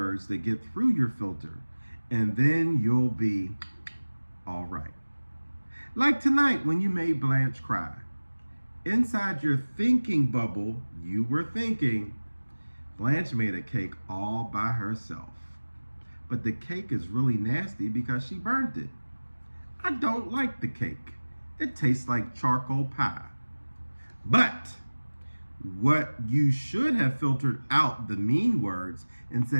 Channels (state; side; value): inverted; both; correlation -1.00